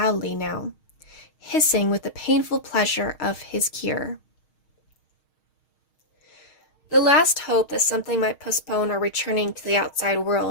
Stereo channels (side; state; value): right; late; 6.4 ms